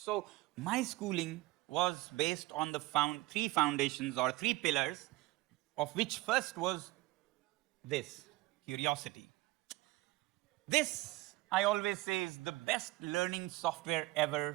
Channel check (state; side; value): quieter; left; 19.5 dB